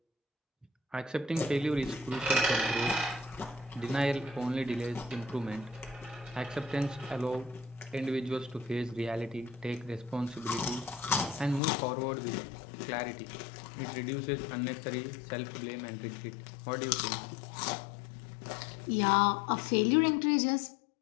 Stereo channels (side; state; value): right; drops out; at 11.6 s